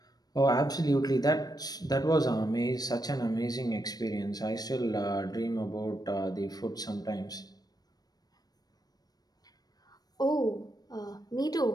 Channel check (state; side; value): late; right; 0.19 ms